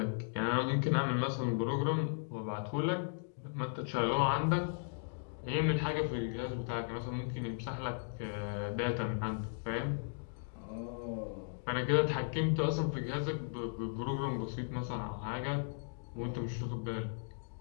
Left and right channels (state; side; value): silent; right; digital silence